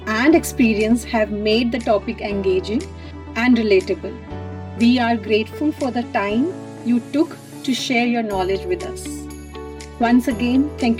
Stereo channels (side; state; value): both; identical; correlation 1.00